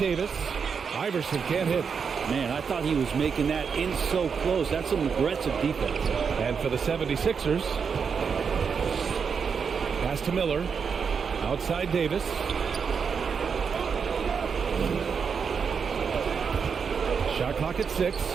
Iverson can't hit. Man, I thought he was making that in so close. That's some aggressive defense. And for the 76ers, pass to Miller. Outside Davis. Shot clock at 6.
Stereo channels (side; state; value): left; quieter; 6.1 dB